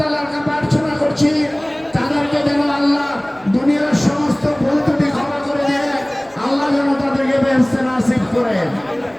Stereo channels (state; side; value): noise; right; hum, 29 dB below the sound